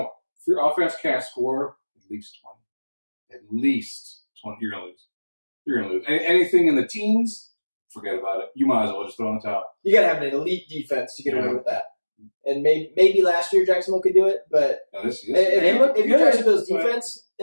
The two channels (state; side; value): inverted; both; correlation -1.00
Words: offense can't score at least 20, you're gonna lose. Anything in the teens, forget about it. You might as well just throw in the towel. You got to have an elite defense to get away Yeah. with that. And maybe last year Jacksonville could do it, but Now, this if you're Jacksonville's defense